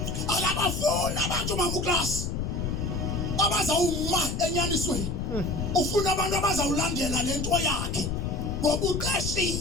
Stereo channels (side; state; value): left; noise; rumble, 2 dB below the sound